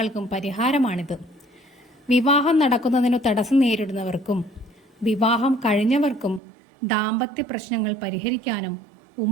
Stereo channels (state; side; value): drops out; left; at 6.4 s